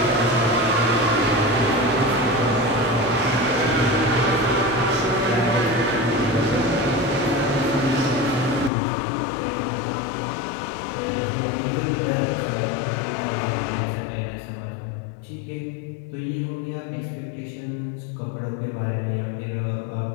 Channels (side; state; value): right; drops out; at 8.7 s